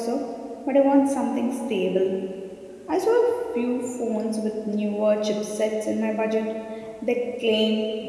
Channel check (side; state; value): both; identical; correlation 1.00